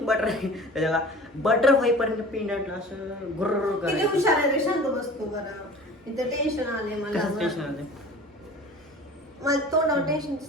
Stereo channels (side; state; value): both; normal; correlation 0.41